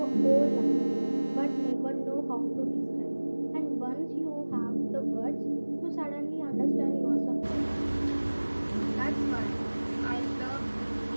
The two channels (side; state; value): both; inverted; correlation -1.00